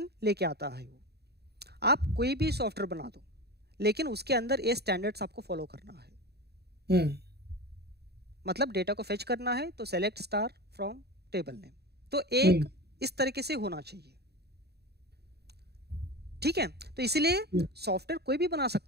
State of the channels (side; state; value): left; late; 0.47 ms